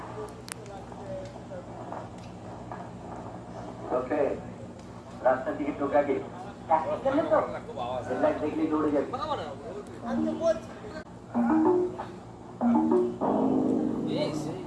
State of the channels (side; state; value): both; identical; correlation 1.00